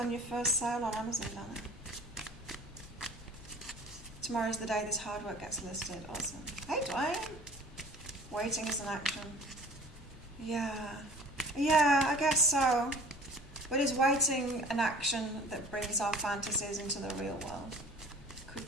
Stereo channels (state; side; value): normal; both; correlation 0.47